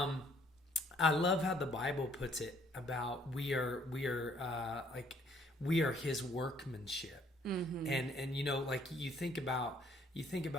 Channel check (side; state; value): both; normal; correlation 0.63